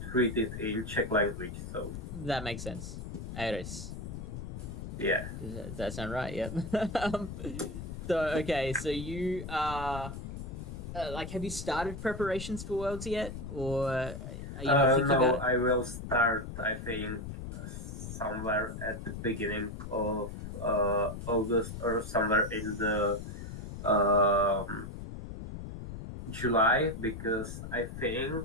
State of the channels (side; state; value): left; noise; rumble, 8 dB below the sound